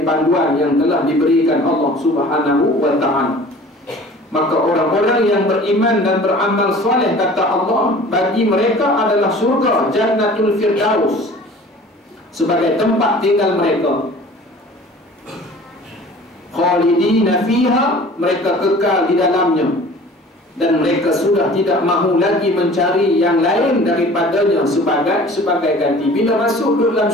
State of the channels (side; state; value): both; normal; correlation 0.45